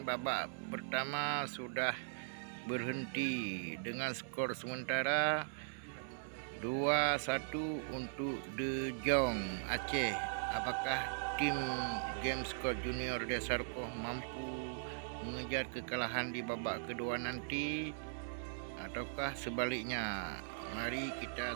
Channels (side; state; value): left; silent; 51 dB below the other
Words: babak pertama sudah berhenti dengan skor sementara 2-1 untuk De Jong Aceh. Apakah tim Gamescode Junior Desarkoh mampu mengejar kekalahan di babak kedua nanti ataukah sebaliknya? Mari kita